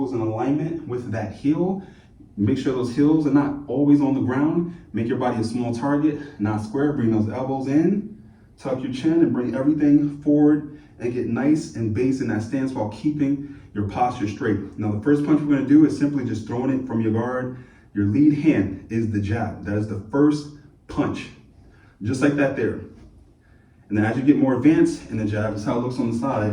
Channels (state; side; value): identical; both; correlation 1.00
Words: in alignment with that heel. Make sure those heels are not always on the ground. Make your body a small target, not square. Bring those elbows in, tuck your chin, and bring everything forward and get nice and base in that stance while keeping your posture straight. Now, the first punch we're gonna do is simply just throwing it from your guard. Your lead hand is the jab. That is the first punch. Just like that there. And then as you get more advanced in the jab, this is how it looks on the